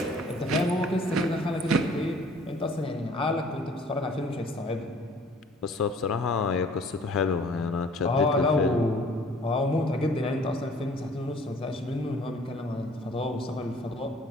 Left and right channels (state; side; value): normal; both; correlation 0.54